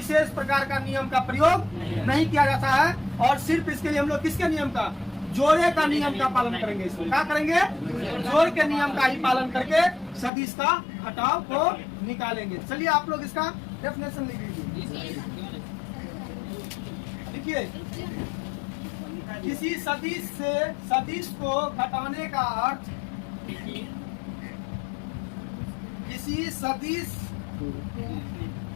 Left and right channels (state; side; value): drops out; right; at 10.3 s